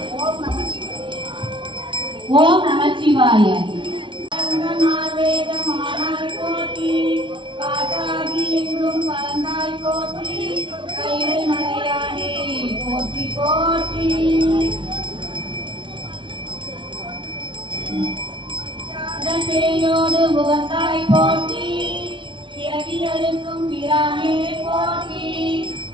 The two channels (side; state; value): left; late; 0.24 ms